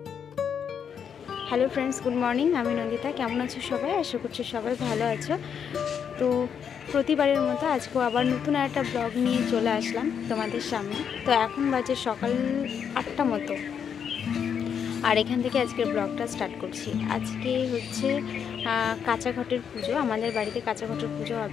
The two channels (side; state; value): right; quieter; 7.6 dB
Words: Hello friends, good morning. আমি নন্দিতা। কেমন আছো সবাই? আশা করছি সবাই ভালো আছো। তো প্রতিবারের মতো আজকেও আবার নতুন একটা ব্লগ নিয়ে চলে আসলাম তোমাদের সামনে। তো এখন বাজে সকাল 8টা মতো, আর এখান থেকে আজকের ব্লগটা স্টার্ট করছি। আজকে হচ্ছে কাঁচা ঘটের পুজো। আমাদের বাড়িতে কাঁচা ঘটের পুজো